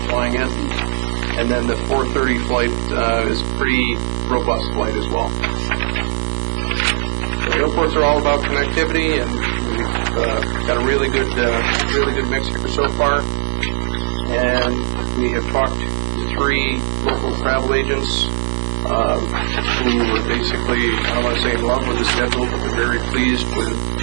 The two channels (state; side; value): silent; left; digital silence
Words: flying in. And then the 4:30 flight is a pretty robust flight as well. The airports are all about connectivity, and we've got a really good mix here so far. And we have talked to 3 local travel agents who were basically, I don't want to say in love with the schedule, but they're very pleased with